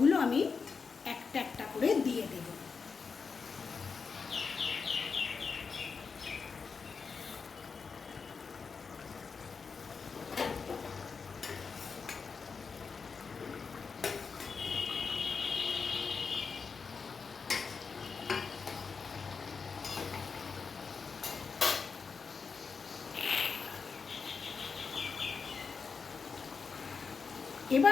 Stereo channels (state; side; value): quieter; right; 5.3 dB